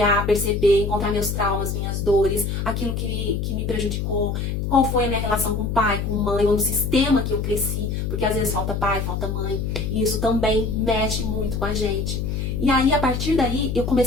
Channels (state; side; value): noise; left; hum, 2 dB below the sound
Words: perceber, encontrar meus traumas, minhas dores, aquilo que me prejudicou, qual foi a minha relação com o pai, com mãe, ou no sistema que eu cresci, porque às vezes falta pai, falta mãe, e isso também mexe muito com a gente. E aí, a partir daí, eu